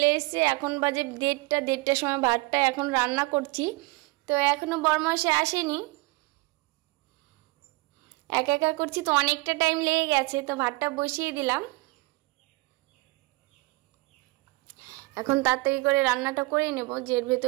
এসেছে। এখন বাজে দেড়টার সময় ভাতটা এখন রান্না করছি, তো এখনও বরমাসে আসেনি, একা একা করছি, তো অনেকটা টাইম লেগে গেছে। তো ভাতটা বসিয়ে দিলাম, এখন তাড়াতাড়ি করে রান্নাটা করে নেব, যে এর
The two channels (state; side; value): quieter; left; 24.3 dB